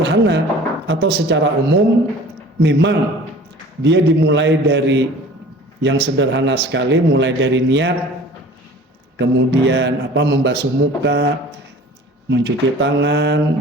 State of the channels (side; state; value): both; normal; correlation 0.45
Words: atau secara umum, memang dia dimulai dari yang sederhana sekali, mulai dari niat, kemudian membasuh muka, mencuci tangan,